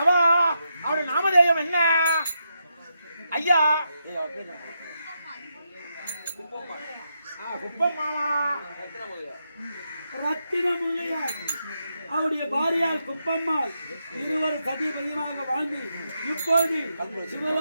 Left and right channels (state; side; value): inverted; both; correlation -0.83